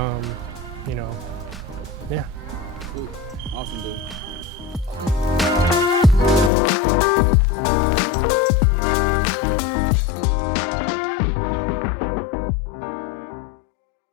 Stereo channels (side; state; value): right; drops out; at 6.5 s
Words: know, yeah. Cool. Awesome, dude.